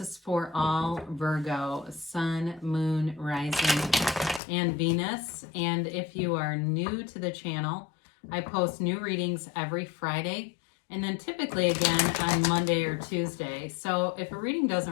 for all Virgo, Sun, Moon, Rising, and Venus. And if you are new to the channel, I post new readings every Friday and then typically again on Monday or Tuesday. So if a reading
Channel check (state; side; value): drops out; right; at 4.4 s